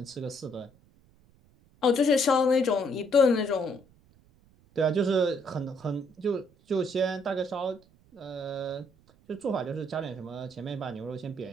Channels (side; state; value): right; noise; rumble, 30 dB below the sound